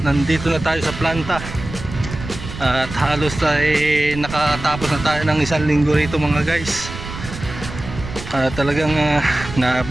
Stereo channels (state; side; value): noise; right; rumble, 10 dB below the sound